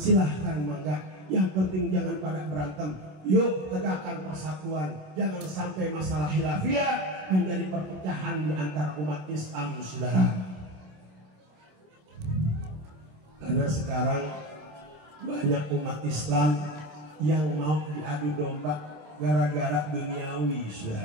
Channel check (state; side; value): late; left; 27 ms